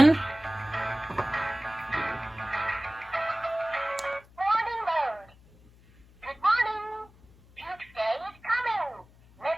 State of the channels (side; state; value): left; noise; hum, 26 dB below the sound